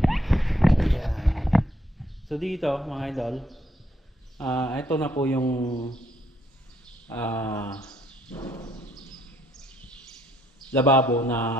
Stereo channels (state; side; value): normal; both; correlation 0.71